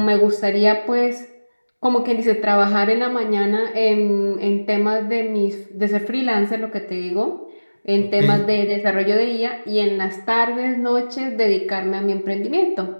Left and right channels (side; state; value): both; inverted; correlation -1.00